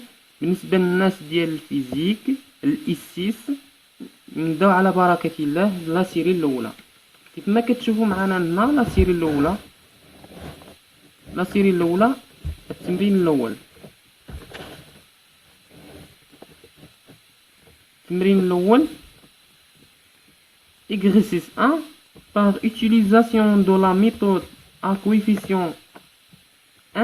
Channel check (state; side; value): identical; both; correlation 1.00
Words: بالنسبة للناس ديال الفيزيك الاسيس. نبداو على بركة الله. لا سيري الاولى كيف ما كتشوفوا معنا هنا. لا سيري الاولى التمرين الاول. التمرين الأول exercice 1 par utilisation de la méthode à coefficient